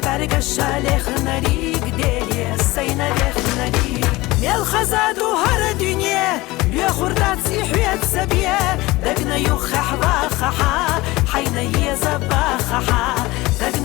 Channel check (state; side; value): quieter; right; 20.4 dB